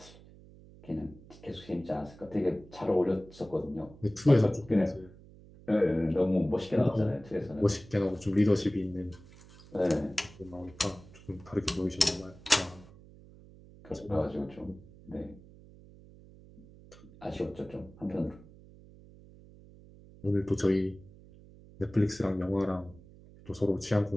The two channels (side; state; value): right; noise; hum, 21 dB below the sound